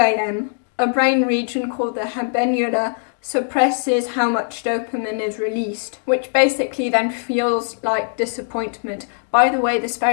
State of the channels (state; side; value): silent; right; digital silence